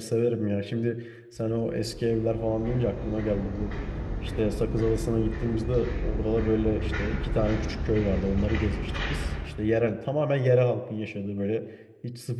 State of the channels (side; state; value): both; identical; correlation 1.00